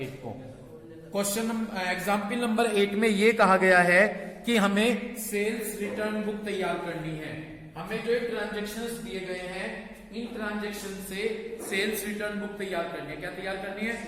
को। क्वेश्चन एग्जाम्पल नंबर 8 में ये कहा गया है कि हमें सेल्स रिटर्न बुक तैयार करनी है। हमें जो ट्रांजेक्शन्स दिए गए हैं, इन ट्रांजेक्शन से सेल्स रिटर्न बुक तैयार करनी है। क्या तैयार करनी है?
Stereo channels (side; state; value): both; identical; correlation 1.00